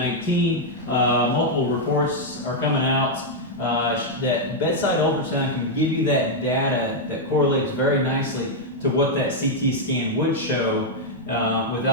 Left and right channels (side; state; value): both; normal; correlation -0.02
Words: multiple reports are coming out that bedside ultrasound can give you that data that correlates very nicely to what that CT scan would show